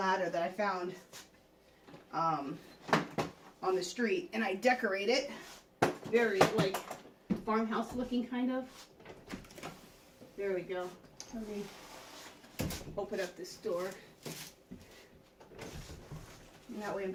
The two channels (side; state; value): both; identical; correlation 1.00